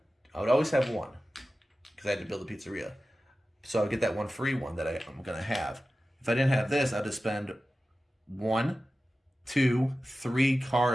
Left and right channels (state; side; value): normal; both; correlation 0.95